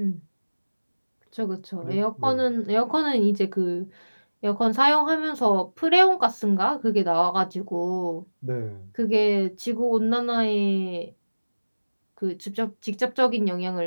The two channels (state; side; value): inverted; both; correlation -1.00